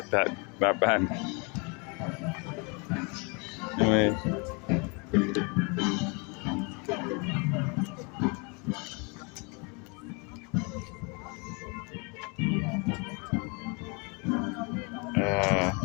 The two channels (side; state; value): right; quieter; 32.2 dB